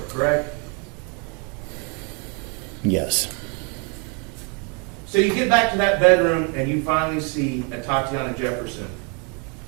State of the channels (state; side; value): quieter; left; 33.1 dB